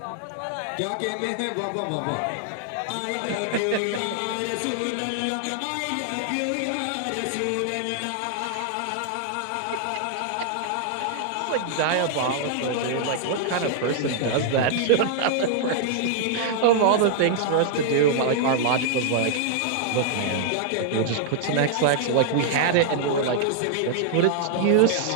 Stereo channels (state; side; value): different; both; correlation -0.01